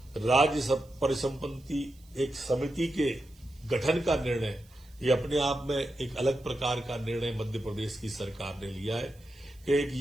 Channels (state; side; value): noise; right; hiss, 29 dB below the sound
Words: राज्य परिसंपत्ति एक समिति के गठन का निर्णय, ये अपने आप में एक अलग प्रकार का निर्णय मध्य प्रदेश की सरकार ने लिया है कि एक